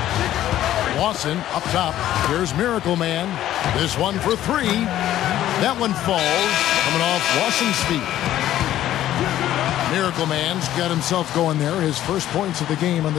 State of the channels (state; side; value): quieter; right; 12.9 dB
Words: Lawson up top. Here's Miracle Man. This one for three. That one falls. Coming off Lawson's feet. Miracle Man's got himself going there. His first points of the game on